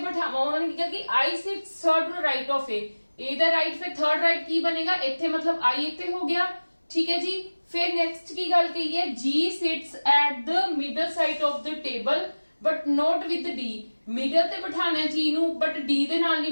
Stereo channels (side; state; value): both; inverted; correlation -1.00